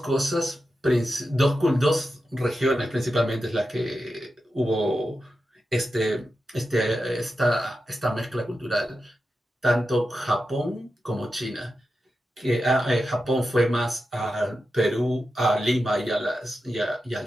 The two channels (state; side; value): normal; both; correlation 0.90